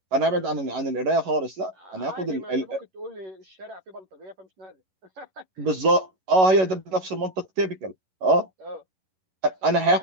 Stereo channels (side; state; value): left; late; 11 ms